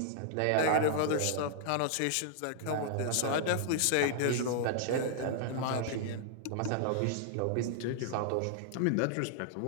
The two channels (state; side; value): different; both; correlation -0.01